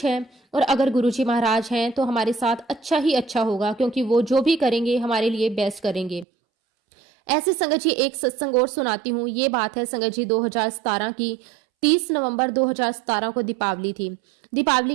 है। और अगर गुरुजी महाराज हैं तो हमारे साथ अच्छा ही अच्छा होगा, क्योंकि वो जो भी करेंगे हमारे लिए बेस्ट करेंगे। ऐसे संगत जी, एक सत्संग और सुनाती हूँ। ये बात है संगत जी 2017 की। 30 नवंबर 2017 को दीपावली थी।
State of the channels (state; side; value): drops out; left; at 6.2 s